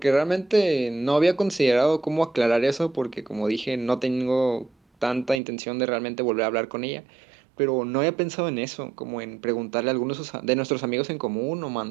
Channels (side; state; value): left; drops out; at 5.4 s